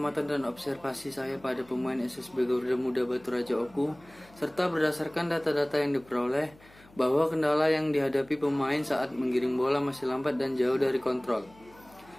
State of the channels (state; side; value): noise; left; hum, 26 dB below the sound